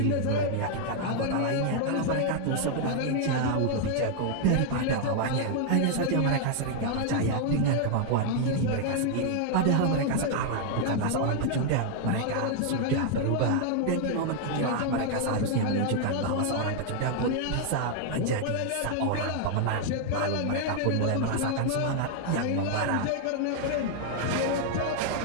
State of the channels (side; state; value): both; different; correlation 0.00